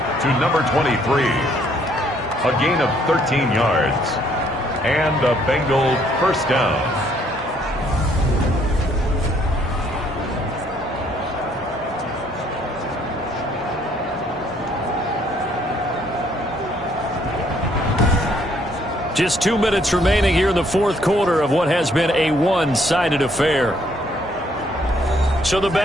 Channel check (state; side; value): normal; both; correlation 0.66